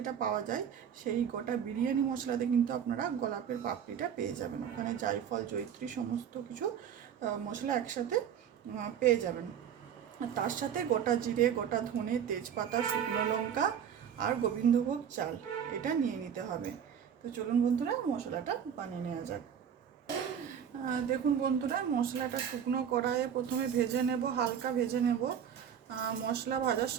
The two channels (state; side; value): quieter; left; 8.4 dB